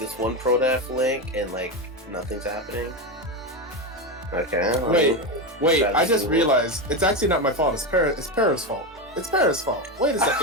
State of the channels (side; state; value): both; normal; correlation 0.14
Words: one ProDef link and like nothing's happening. Okay. Wait. I just realized it's actually not my fault. It's Para's fault. It's Para's fault. Wait a